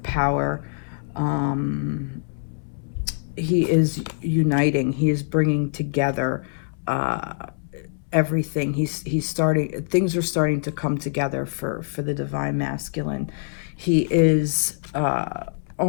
power. He is uniting. He is bringing together everything. He's starting. Things are starting to come together for the Divine Masculine. He is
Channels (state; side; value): silent; right; 62 dB below the other